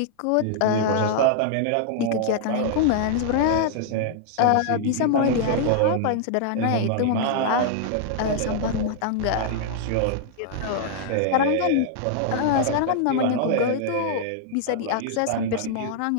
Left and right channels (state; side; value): different; both; correlation -0.01